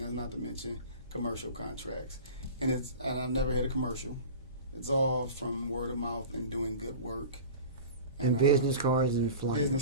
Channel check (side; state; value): both; inverted; correlation -0.36